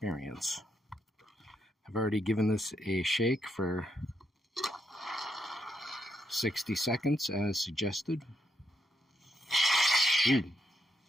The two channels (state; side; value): normal; both; correlation 0.79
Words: I've already given this a shake for 60 seconds as suggested. Ooh.